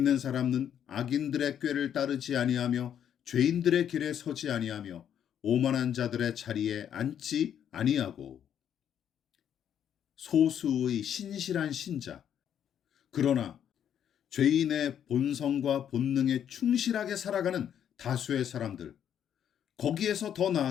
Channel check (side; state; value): right; quieter; 9.3 dB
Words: 사람은 악인들의 꾀를 따르지 아니하며 죄인들의 길에 서지 아니하며 오만한 자들의 자리에 앉지 아니하고. 소수의 신실한 신자. 그러나 죄인의 본성과 본능에 충실하게 살아가는 다수의 사람들. 거기에서 더